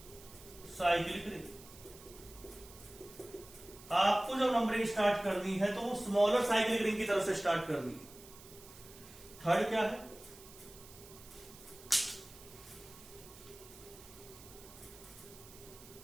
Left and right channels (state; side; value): noise; right; hiss, 19 dB below the sound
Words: साइक्लिक रिंग। आपको जब नंबरिंग स्टार्ट करनी है तो वो स्मॉलर साइक्लिक रिंग की तरफ से स्टार्ट करनी है। थर्ड क्या है?